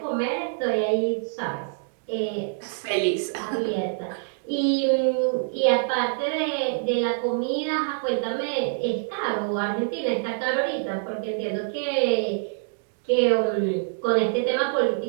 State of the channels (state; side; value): silent; left; digital silence